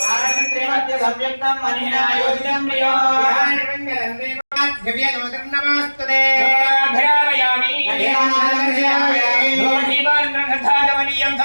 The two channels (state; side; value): inverted; both; correlation -1.00